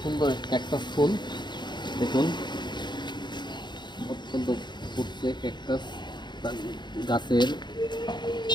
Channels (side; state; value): right; late; 0.21 ms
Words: সুন্দর ক্যাকটাস ফুল, দেখুন অত্যন্ত ফুটছে ক্যাকটাস গাছের,